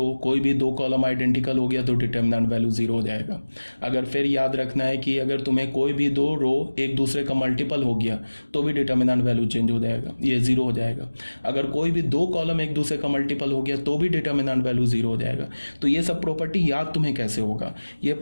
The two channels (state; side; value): inverted; both; correlation -1.00